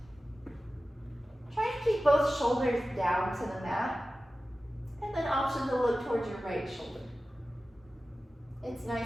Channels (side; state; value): both; normal; correlation 0.95